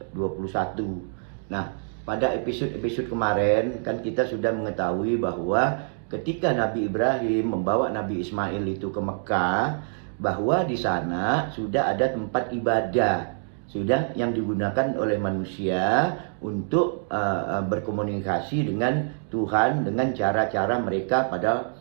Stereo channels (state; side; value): silent; left; digital silence